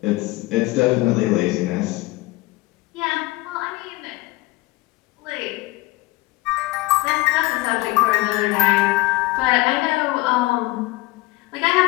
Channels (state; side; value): quieter; right; 20.7 dB